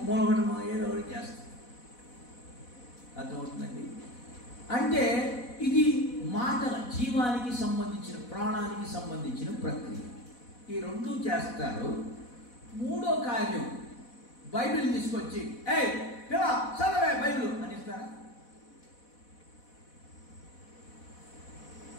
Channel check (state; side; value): late; right; 4.1 ms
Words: మూలపడమో ఏదో ఒకటి చేస్తాడు. అర్థమవుతుందండి. అంటే ఇది మాటల జీవానికి సంబంధించిన, ప్రాణానికి సంబంధించిన ప్రక్రియ. ఈ రెండు చేస్తారు. మూడో కార్యం, బైబిల్ తీసుకొచ్చి చదవే బైబిల్ అనిస్తారా?